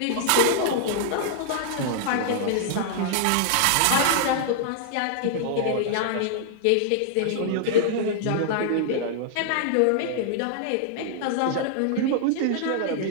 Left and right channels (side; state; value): both; different; correlation -0.01